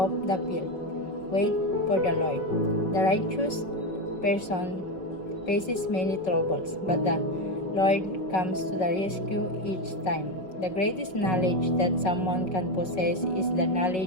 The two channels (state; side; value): late; right; 5.4 ms